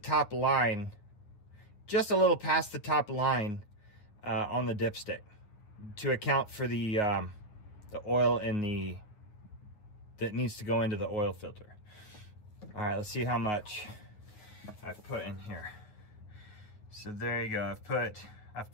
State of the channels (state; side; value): late; right; 9.5 ms